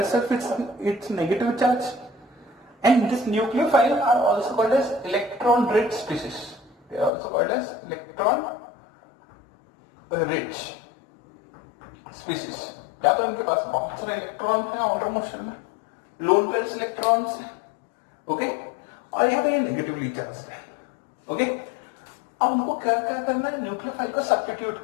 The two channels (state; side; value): drops out; right; at 7.1 s